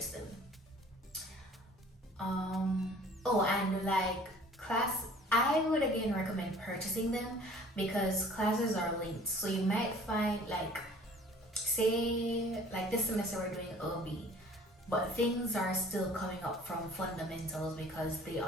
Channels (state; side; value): normal; both; correlation 0.51